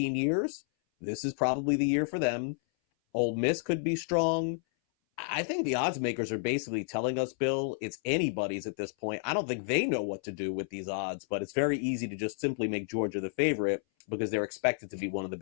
years, this is probably the year for them. Ole Miss could be strong. I think the odds makers are basically telling us, Bill, it's anybody's at this point. I don't think they know what to do with these odds, but it's very easy to just simply make Georgia the favorite because they're expected to be one of the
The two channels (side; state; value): right; silent; 57 dB below the other